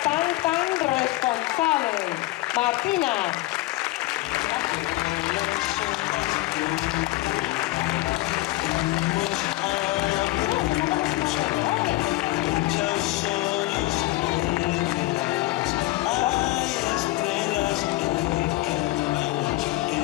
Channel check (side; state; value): right; quieter; 19.0 dB